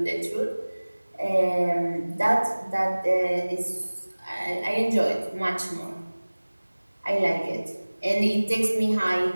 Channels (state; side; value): inverted; both; correlation -1.00